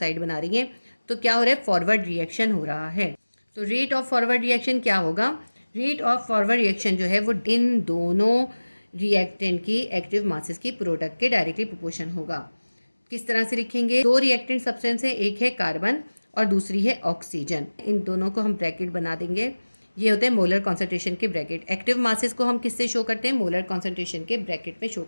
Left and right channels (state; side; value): inverted; both; correlation -1.00